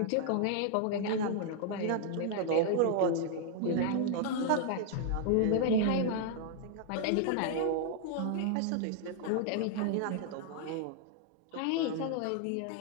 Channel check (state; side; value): different; both; correlation 0.00